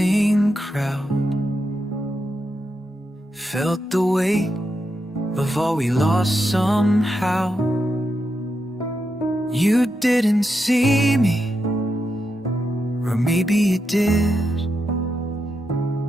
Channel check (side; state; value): both; normal; correlation 0.85